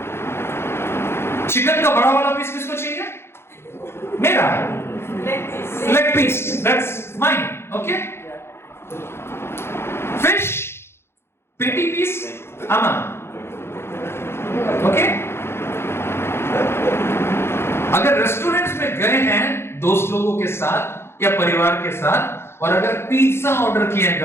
चिकन का बड़ा वाला पीस किसको चाहिए? मेरा। Leg piece, that's mine. Okay, fish patty piece अमन। ओके, अगर रेस्टोरेंट्स में गए हैं दोस्त लोगों के साथ या परिवार के साथ, और अगर पिज्जा ऑर्डर किया है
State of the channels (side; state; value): right; late; 0.12 ms